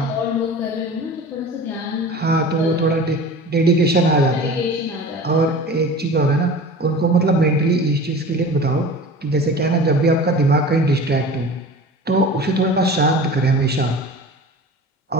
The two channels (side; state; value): both; normal; correlation 0.37